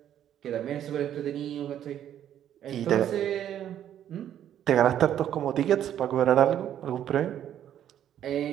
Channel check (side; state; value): left; quieter; 10.5 dB